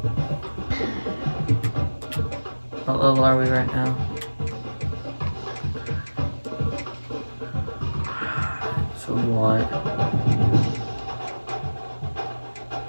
What level are we right now? So we want...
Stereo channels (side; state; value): both; inverted; correlation -1.00